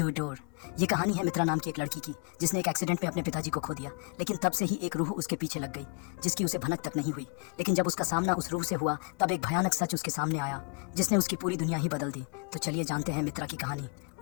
door. ये कहानी है मित्रा नाम की एक लड़की की जिसने एक एक्सीडेंट में अपने पिताजी को खो दिया, लेकिन तब से ही एक रूह उसके पीछे लग गई जिसकी उसे भनक तक नहीं हुई। लेकिन जब उसका सामना उस रूह से हुआ तब एक भयानक सच उसके सामने आया जिसने उसकी पूरी दुनिया ही बदल दी। तो चलिए जानते हैं मित्रा की कहानी,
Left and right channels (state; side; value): quieter; right; 32.7 dB